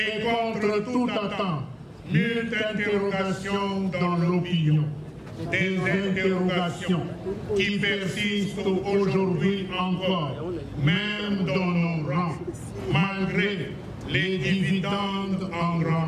contre toute attente nulle interrogation dans l'opinion. Des interrogations qui persistent aujourd'hui encore, même dans nos rangs, malgré les dividendes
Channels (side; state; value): both; identical; correlation 1.00